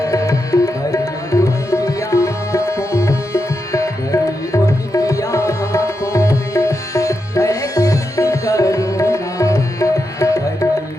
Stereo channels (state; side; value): normal; both; correlation 0.86